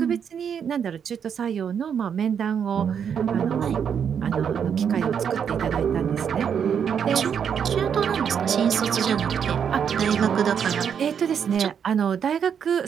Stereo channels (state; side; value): quieter; left; 7.7 dB